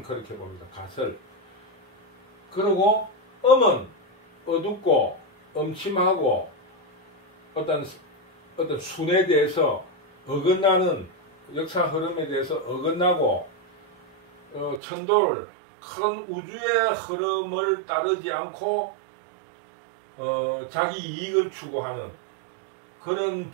가설. 그리고 음은 어둡고 음침하고 어떤 순에 대해서 어긋나는 역사 흐름에 대해서 어긋나고 천도를 큰 우주의 흐름을 따르지 않고 자기 이익을 추구하는 그런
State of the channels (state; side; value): drops out; left; at 14.8 s